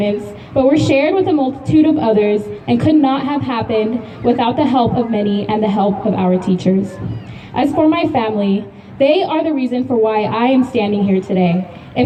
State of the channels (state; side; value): identical; both; correlation 1.00